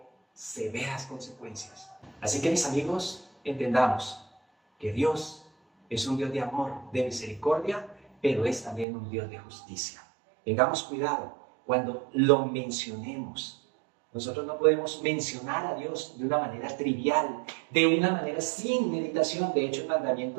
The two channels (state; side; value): drops out; left; at 8.8 s